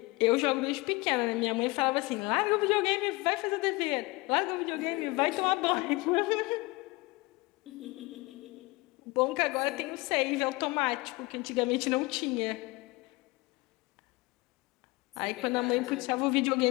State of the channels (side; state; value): right; quieter; 23.6 dB